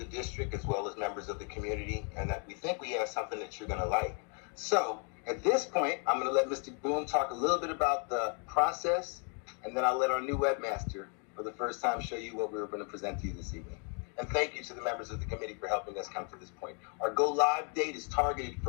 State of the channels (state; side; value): quieter; right; 38.9 dB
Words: district as well as members of the community, and that we think we have something that you're going to like. So at this point, I'm going to let Mr. Boom talk a little bit about the process, and then I'll let our new webmaster for the first time show you what we were going to present to you this evening. And thank you to the members of the committee for helping us come to this point. Our go live date is targeted